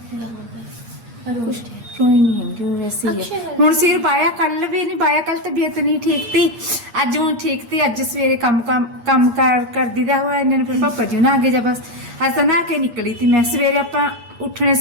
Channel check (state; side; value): late; left; 8.5 ms